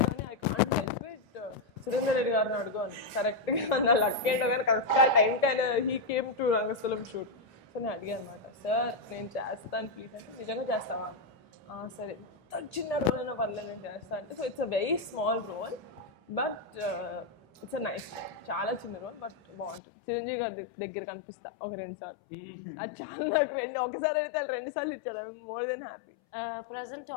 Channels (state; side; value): drops out; right; at 19.8 s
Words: కానీ I can't help it, Surender Reddy గారిని అడుగు అని. కరెక్ట్గా నా లక్ ఏంటో కానీ కరెక్ట్గా టైంకి ఆయన he came to Rangasthalam shoot. So నేను అడిగాను అనమాట, సార్ నేను చేస్తాను ప్లీజ్ అంటే, నిజంగా చేస్తావా అని. సరే, ఎంత చిన్న రోల్ అయినా పర్లేదు నేను చేస్తాను అంటే. So it's a very small role but it's a nice role, చాలా చిన్న రోల్ బట్ బాగుంటుంది. చిరంజీవి గారి దగ్గర కనిపిస్తా ఒక 2 సార్లు, అది చాలా నాకు ఒకసారి అయితే 2 సార్లు ఇచ్చాడు, I more than happy. Present